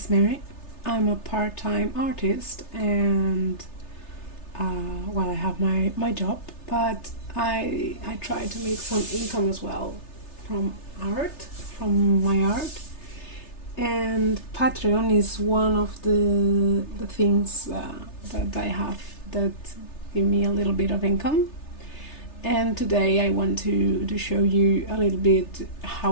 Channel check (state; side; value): late; right; 3.3 ms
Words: Mary. I'm a part-time artist and well, I have my job, but I try to make some income as well from my art. And Patreon is one of the things that I have that give me a little bit of income. And today I want to show you a little bit